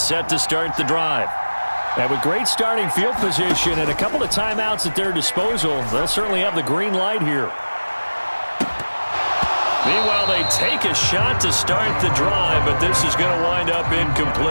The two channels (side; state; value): both; inverted; correlation -1.00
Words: set to start the drive. And with great starting field position and a couple of timeouts at their disposal, they'll certainly have the green light here. Meanwhile, they take a shot to start the drive, but this is going to wind up